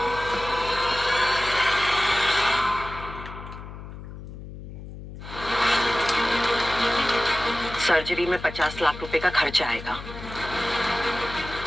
सर्जरी में 50 लाख रुपए का खर्चा आएगा।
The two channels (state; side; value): noise; left; hum, 12 dB below the sound